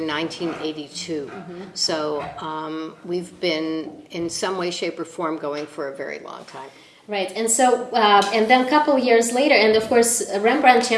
1982. So we've been, in some way, shape, or form, going for a very long time. Right, and so, and then a couple years later, and of course, Rembrandt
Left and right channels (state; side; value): identical; both; correlation 1.00